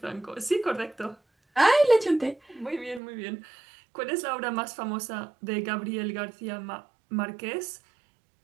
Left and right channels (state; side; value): drops out; left; at 3.0 s